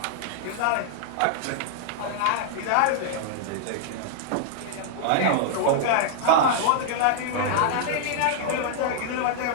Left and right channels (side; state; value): both; different; correlation -0.01